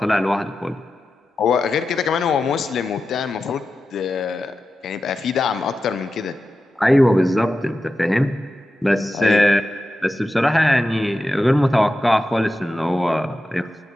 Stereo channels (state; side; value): normal; both; correlation 0.92